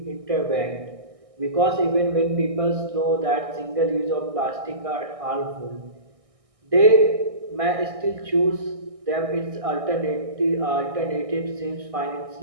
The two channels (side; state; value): left; late; 1.6 ms